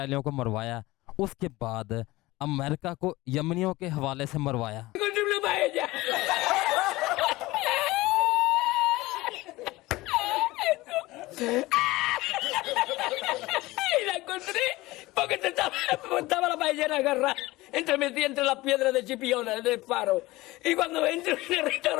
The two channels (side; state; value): right; quieter; 19.5 dB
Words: को मरवाया, उसके बाद अमेरिका को यमनियों के हवाले से मरवाया। Y la encontré porque estaba la ballena agarrada metida entre las piedras de Chipiona, del faro. Y cuando entro en el